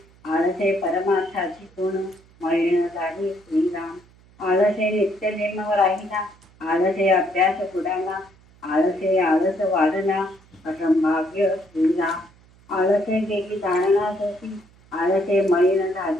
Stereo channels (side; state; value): right; noise; hum, 28 dB below the sound